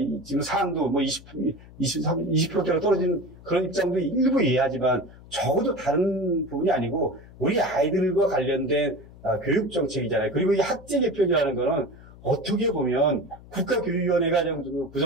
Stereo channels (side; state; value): left; noise; hum, 20 dB below the sound